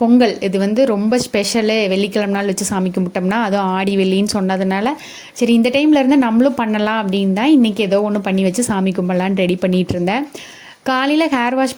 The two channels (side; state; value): both; identical; correlation 1.00